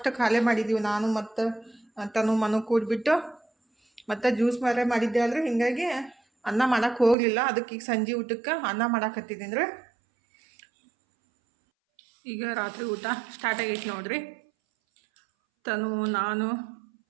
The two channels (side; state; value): left; drops out; at 7.2 s